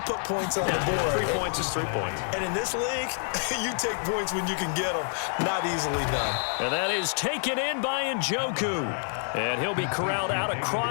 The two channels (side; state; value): right; silent; 60 dB below the other